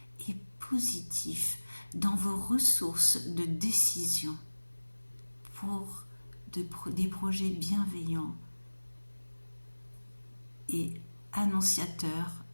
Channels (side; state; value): both; inverted; correlation -1.00